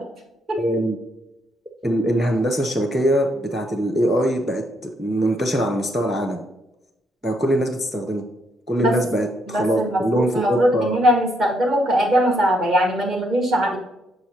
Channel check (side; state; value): both; normal; correlation 0.74